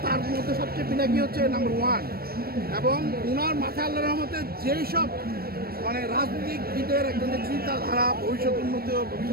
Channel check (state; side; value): late; left; 0.44 ms